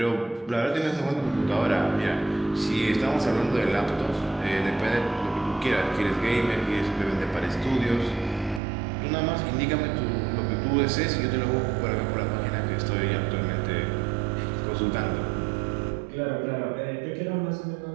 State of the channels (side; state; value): left; drops out; at 8.6 s